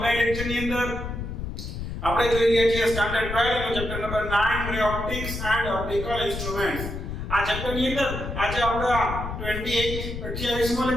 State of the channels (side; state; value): left; noise; rumble, 6 dB below the sound